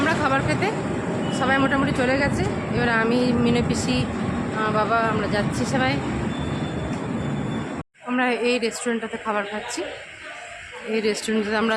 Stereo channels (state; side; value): identical; both; correlation 1.00